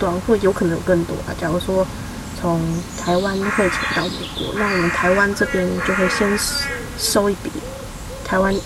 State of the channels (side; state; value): both; identical; correlation 1.00